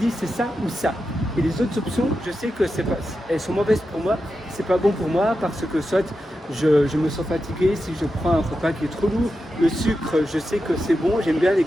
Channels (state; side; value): normal; both; correlation 0.89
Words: c'est ça ou ça. Et les autres options, je sais que elles sont mauvaises pour moi, c'est pas bon pour moi parce que soit je me sens fatigué si je prends un repas qui est trop lourd. Le sucre, je sais que c'est bon, j'aime bien les